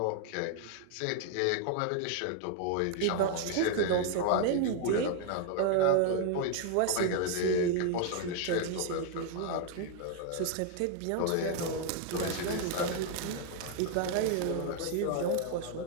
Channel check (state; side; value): different; both; correlation 0.00